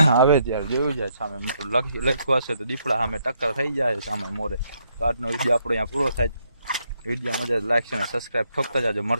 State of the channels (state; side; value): inverted; both; correlation -0.75